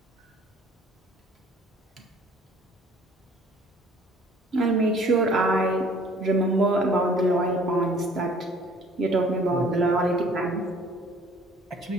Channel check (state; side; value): normal; both; correlation 0.54